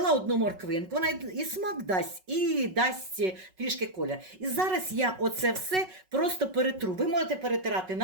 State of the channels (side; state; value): left; late; 5.4 ms